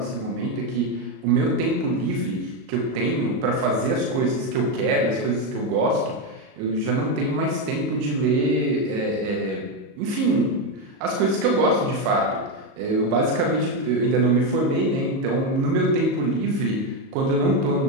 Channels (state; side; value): late; left; 37 ms